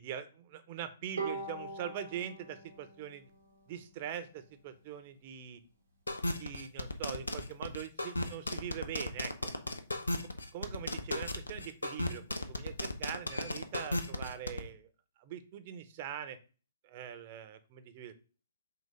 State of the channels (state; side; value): inverted; both; correlation -0.66